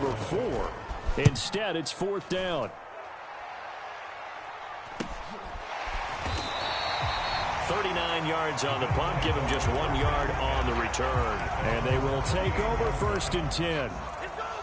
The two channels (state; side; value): identical; both; correlation 1.00